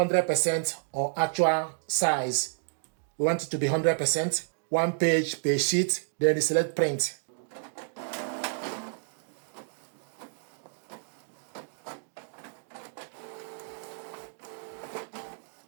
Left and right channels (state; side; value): silent; left; digital silence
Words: or actual size. We want it to be 100%. 1 page per sheet. Then you select print.